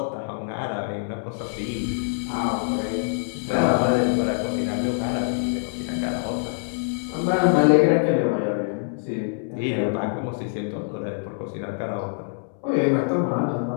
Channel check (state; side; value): silent; right; 62 dB below the other